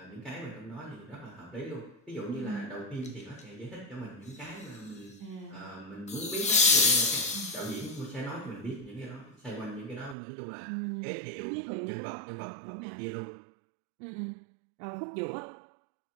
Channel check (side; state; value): left; drops out; at 10.2 s